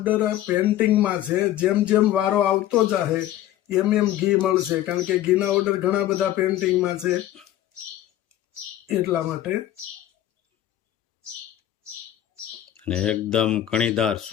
પેન્ટિંગમાં છે. જેમ જેમ વારો આવતો જાહે એમ એમ ઘી મળશે, કારણ કે ઘીના ઓર્ડર ઘણા બધા પેન્ટિંગમાં છે એટલા માટે. અને એકદમ કણીદાર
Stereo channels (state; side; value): quieter; right; 13.1 dB